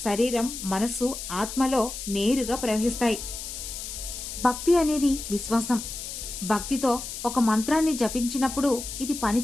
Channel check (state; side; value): noise; left; hiss, 8 dB below the sound